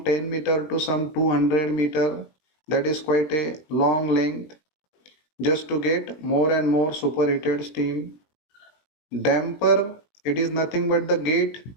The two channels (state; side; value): late; right; 19 ms